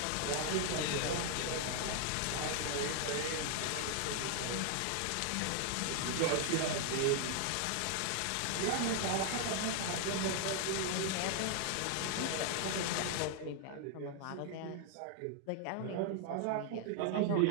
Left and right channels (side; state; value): both; different; correlation 0.00